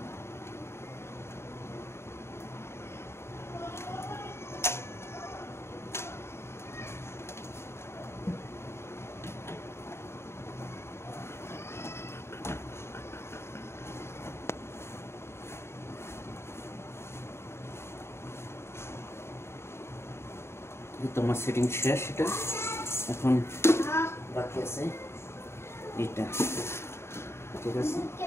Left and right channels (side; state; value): right; late; 0.12 ms